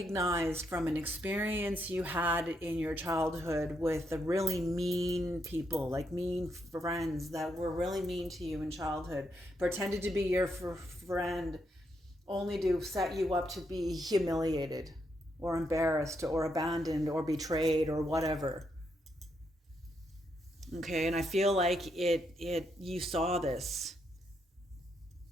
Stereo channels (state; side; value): normal; both; correlation 0.79